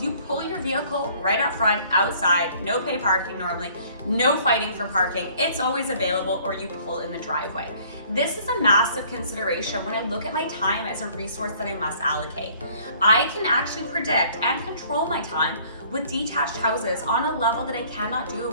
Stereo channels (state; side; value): inverted; both; correlation -0.57